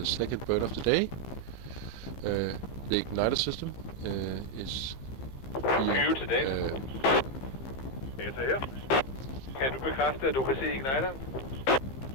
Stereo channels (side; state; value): right; late; 15 ms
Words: second burn of the day. The igniter system is being... Data her. Kan du bekræfte, at du kan se igniteren?